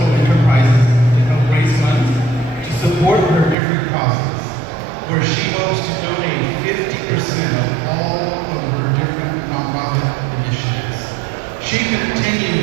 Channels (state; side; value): drops out; left; at 3.6 s